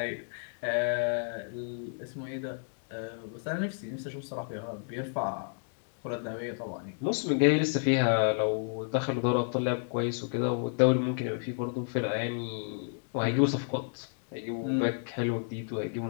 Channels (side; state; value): right; silent; digital silence